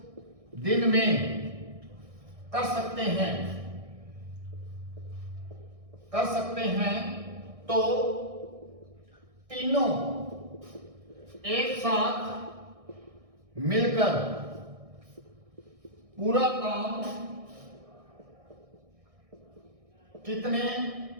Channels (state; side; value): late; left; 1.6 ms